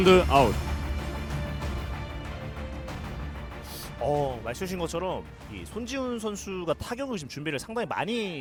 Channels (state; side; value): identical; both; correlation 1.00